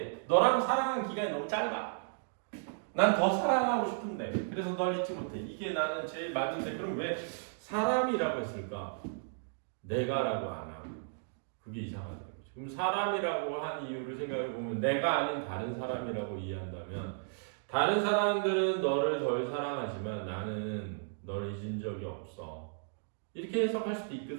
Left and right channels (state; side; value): silent; left; digital silence